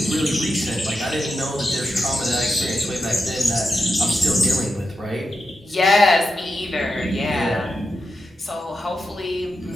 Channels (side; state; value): both; normal; correlation 0.88